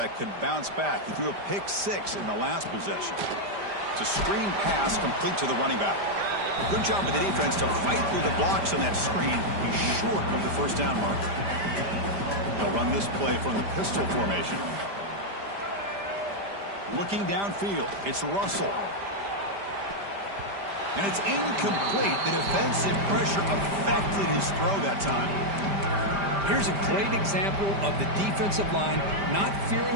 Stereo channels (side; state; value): left; late; 5.0 ms